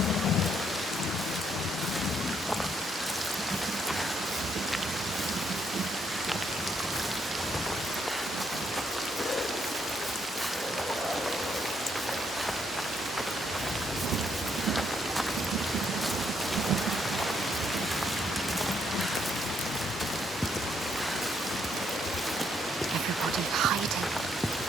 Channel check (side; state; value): both; normal; correlation 0.74